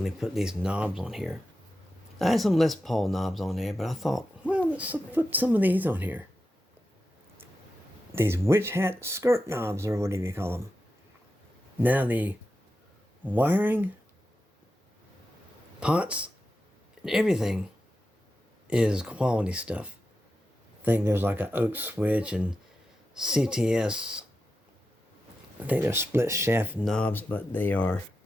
put these knobs on here. I had some Les Paul knobs on there, but I thought, well, let's put some of these on here. These witch hat skirt knobs, or whatever you call them. Now the wiring, pots, and everything is quality stuff. I think there's like an oak switch and CTS. I think they're split shaft knobs, but they are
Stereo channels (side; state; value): both; normal; correlation 0.90